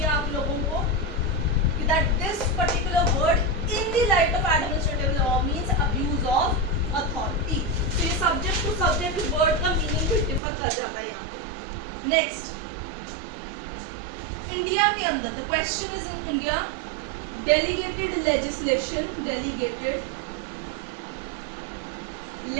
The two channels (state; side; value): drops out; left; at 10.4 s